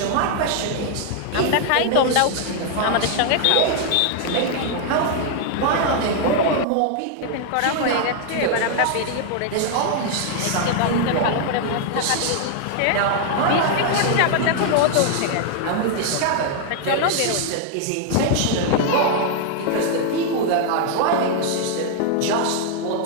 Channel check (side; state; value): both; different; correlation 0.00